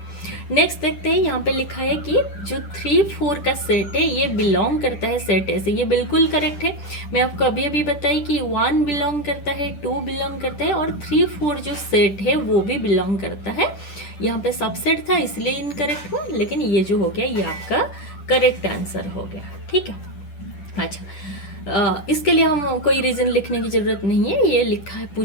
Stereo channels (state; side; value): late; right; 10 ms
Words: नेक्स्ट देखते हैं, यहाँ पे लिखा है कि जो 3, 4 का सेट है ये बिलोंग करता है सेट ए से, ये बिल्कुल करेक्ट है। मैं आपको अभी अभी बताई कि 1 बिलोंग करता है, 2 बिलोंग करता है और 3, 4 जो सेट है वो भी बिलोंग करता है। यहाँ पे सबसेट था इसलिए इनकरेक्ट हुआ, लेकिन ये जो हो गया ये आपका करेक्ट आंसर हो गया, ठीक है। अच्छा, इसके लिए हम कोई रीज़न लिखने की ज़रूरत नहीं है, ये लिखा है,